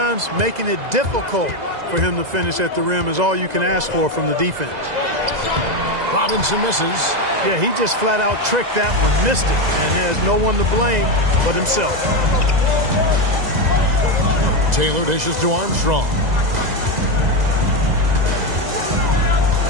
making it difficult for him to finish at the rim is all you can ask for from the defense. Robinson misses. Yeah, he just flat out tricked that one, missed it, and has no one to blame but himself. Taylor dishes to Armstrong.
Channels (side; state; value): left; late; 2.0 ms